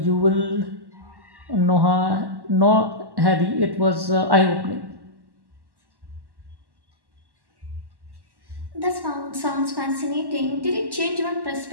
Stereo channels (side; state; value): left; late; 1.1 ms